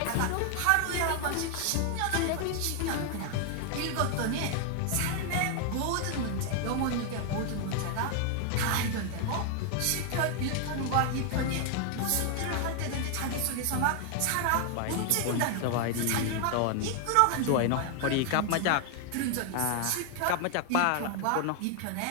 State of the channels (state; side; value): different; both; correlation 0.00